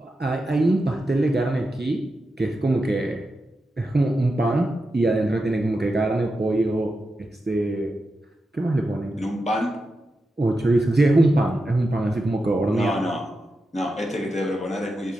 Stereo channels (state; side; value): normal; both; correlation 0.89